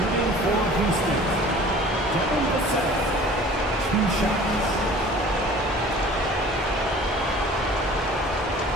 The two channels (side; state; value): both; normal; correlation 0.46